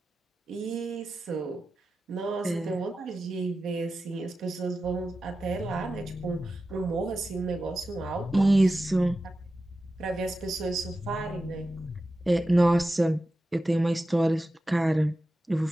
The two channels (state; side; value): normal; both; correlation 0.93